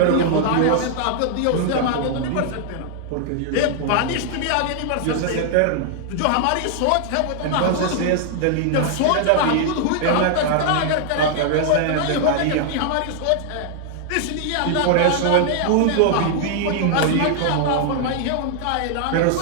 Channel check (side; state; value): both; different; correlation -0.01